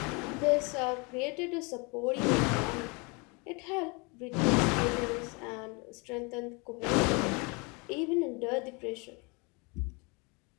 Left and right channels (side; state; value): right; quieter; 30.0 dB